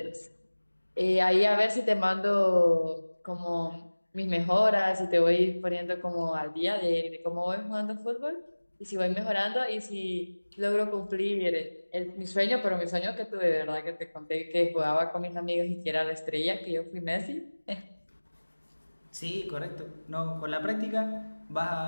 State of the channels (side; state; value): both; inverted; correlation -1.00